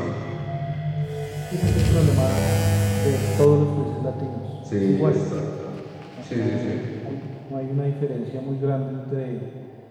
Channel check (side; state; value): both; identical; correlation 1.00